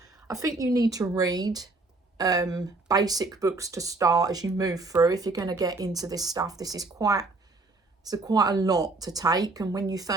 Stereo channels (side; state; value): left; quieter; 3.4 dB